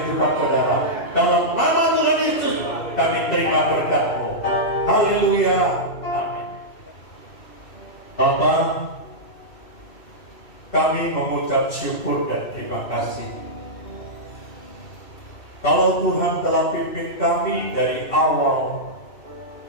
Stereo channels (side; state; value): right; late; 2.6 ms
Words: saudara. Dalam nama Tuhan Yesus kami terima berkat-Mu. Haleluya. Amin. Bapa, kami mengucap syukur dan terima kasih. Kalau Tuhan telah pimpin kami dari awal,